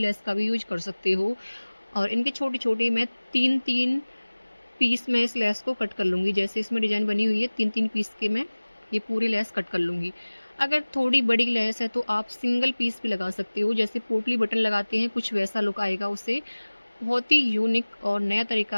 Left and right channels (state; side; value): inverted; both; correlation -1.00